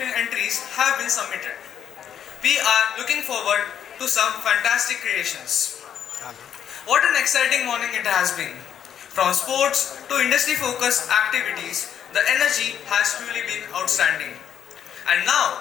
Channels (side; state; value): right; quieter; 9.1 dB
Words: have been submitted. We are looking forward to some fantastic creations. What an exciting morning it has been. From sports to industry focused activities, the energy has truly been outstanding. And